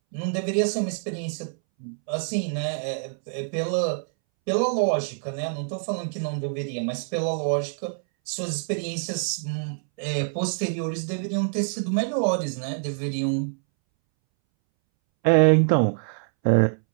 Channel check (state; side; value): silent; left; 61 dB below the other